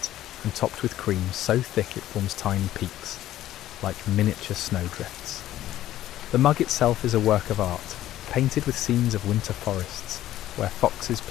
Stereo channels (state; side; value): quieter; right; 13.5 dB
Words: and topped with cream so thick it forms tiny peaks, like miniature snowdrifts. The mug itself is a work of art, painted with scenes of winter forests, where foxes